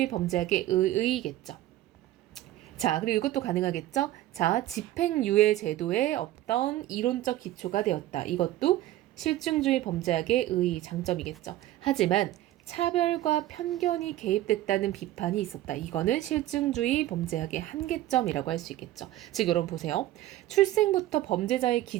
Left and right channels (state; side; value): quieter; left; 14.7 dB